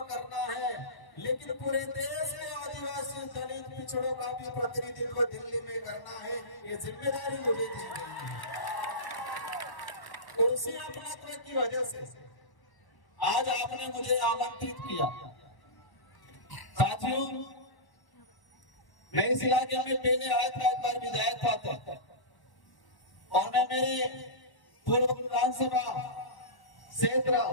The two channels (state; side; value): late; right; 1.1 ms